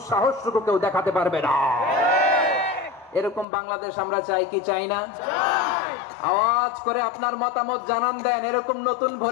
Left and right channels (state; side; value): drops out; right; at 3.5 s